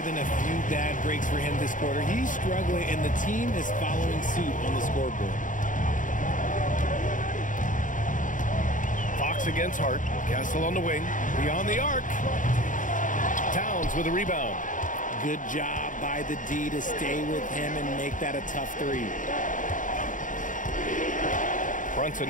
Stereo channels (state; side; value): late; right; 0.38 ms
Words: a few bad breaks for him this quarter. He's struggling, and the team is following suit on the scoreboard. Fox against Hart. Castle on the wing. Beyond the arc. Towns with a rebound. Good job by the D to stay with him and make that a tough 3. Brunson